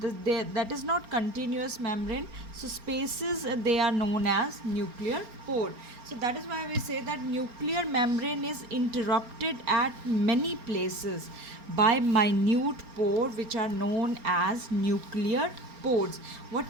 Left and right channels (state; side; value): late; left; 4.3 ms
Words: is not continuous membrane, so spaces they are known as nuclear pore. So that is why we say that nuclear membrane is interrupted at many places by minute pore which are known as nuclear pores. What